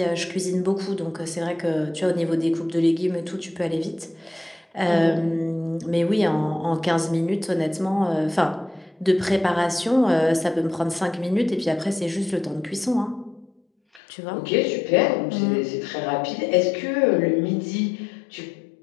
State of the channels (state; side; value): drops out; right; at 14.0 s